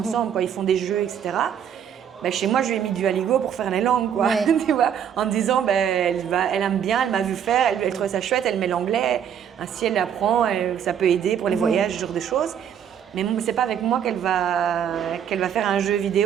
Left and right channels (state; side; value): quieter; left; 8.8 dB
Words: ils font des jeux, etc. Chez moi, je lui ai mis du Aligo pour faire les langues, quoi. Tu vois, en me disant, elle aime bien, elle m'a vu faire, elle trouve ça chouette, elle met l'anglais, ainsi elle apprend, ça peut aider pour les voyages, ce genre de choses. Mais c'est pas avec moi qu'elle va faire un jeu